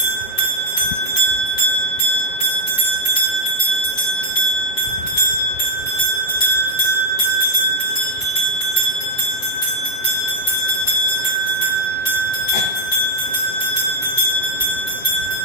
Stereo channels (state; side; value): late; right; 7.4 ms